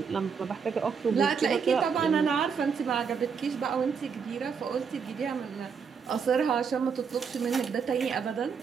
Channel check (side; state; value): left; quieter; 6.2 dB